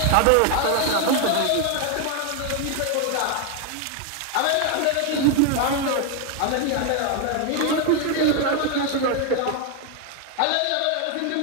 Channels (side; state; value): both; different; correlation 0.01